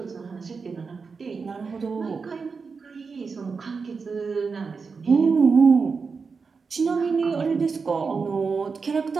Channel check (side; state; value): left; quieter; 5.0 dB